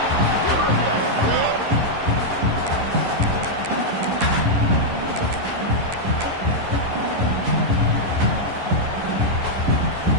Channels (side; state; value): left; late; 11 ms